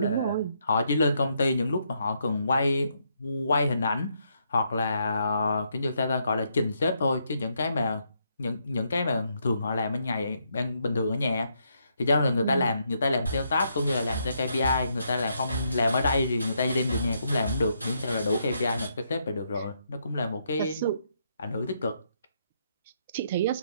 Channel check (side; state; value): both; inverted; correlation -0.76